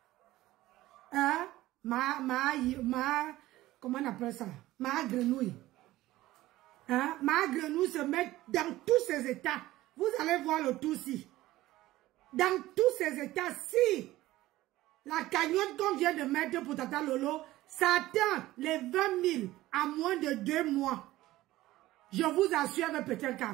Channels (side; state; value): left; quieter; 16.5 dB